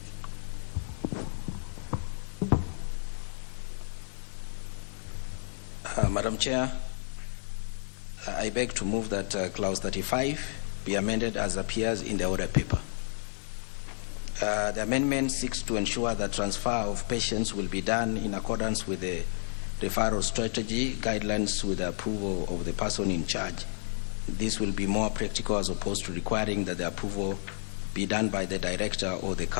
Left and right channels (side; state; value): right; silent; digital silence